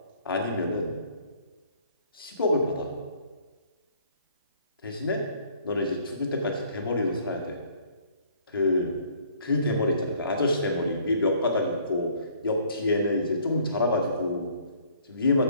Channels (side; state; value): both; inverted; correlation -0.59